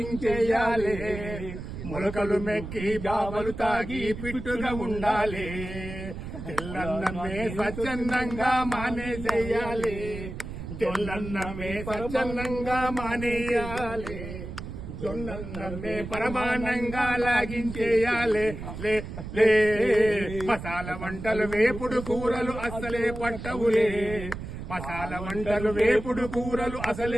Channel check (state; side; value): noise; right; rumble, 9 dB below the sound